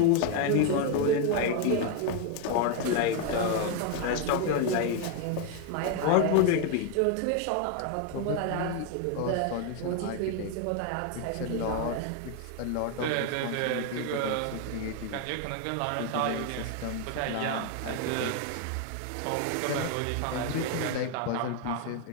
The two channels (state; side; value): different; both; correlation 0.01